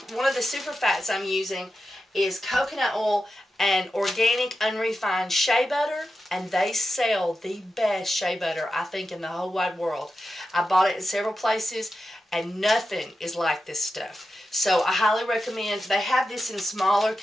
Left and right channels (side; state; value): both; normal; correlation 0.90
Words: one of the super fats I'm using is coconut oil and organic unrefined shea butter, and they sell the best shea butter, I think, in the whole wide world. I bought it in several places, and nothing is like this stuff. So I highly recommend. They have this in smaller